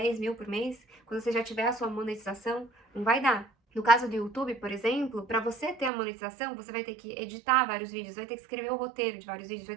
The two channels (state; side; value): drops out; left; at 5.9 s